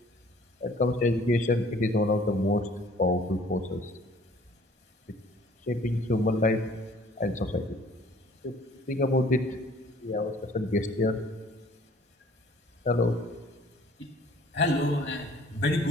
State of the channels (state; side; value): normal; both; correlation 0.54